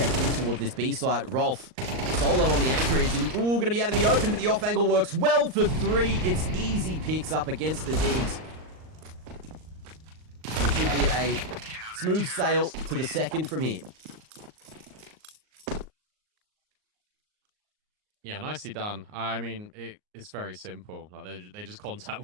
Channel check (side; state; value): left; late; 38 ms